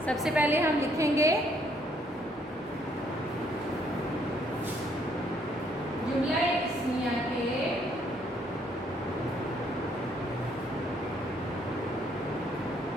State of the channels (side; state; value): both; normal; correlation 0.68